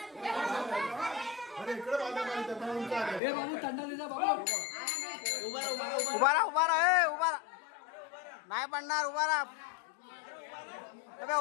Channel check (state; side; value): drops out; right; at 3.2 s